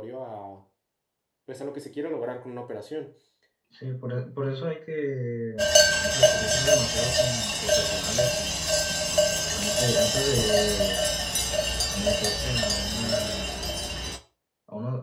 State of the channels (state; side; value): identical; both; correlation 1.00